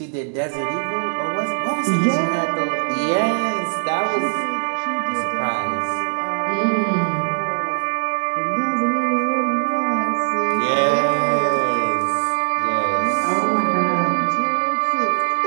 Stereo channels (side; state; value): left; silent; 65 dB below the other